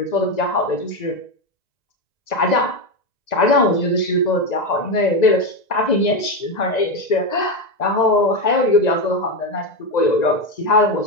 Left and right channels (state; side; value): late; right; 1.9 ms